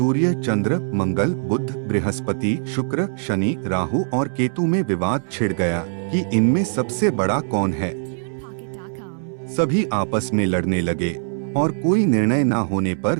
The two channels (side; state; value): left; silent; 63 dB below the other